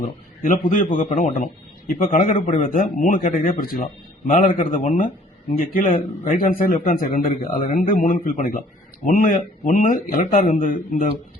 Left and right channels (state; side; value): normal; both; correlation 0.56